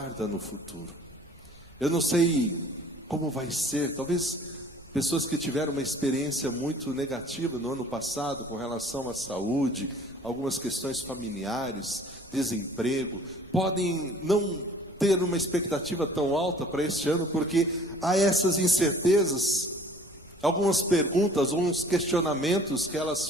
no futuro. Eu não sei como vai ser. Talvez pessoas que tiveram uma experiência muito negativa no ano passado com relação à saúde, algumas questões familiares, desemprego, podem não ter uma expectativa tão alta para este ano, porque há essas incertezas, algumas perguntas, alguns questionamentos que elas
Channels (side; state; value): right; noise; rumble, 26 dB below the sound